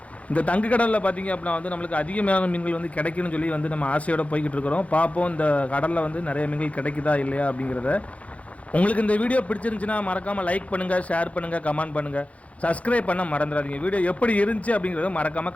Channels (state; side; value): late; right; 0.065 ms